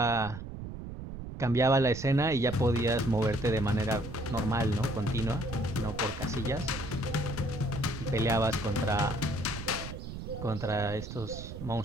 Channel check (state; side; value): noise; right; rumble, 9 dB below the sound